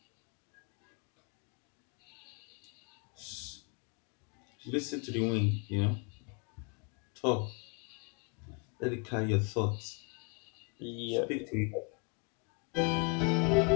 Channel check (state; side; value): quieter; right; 33.6 dB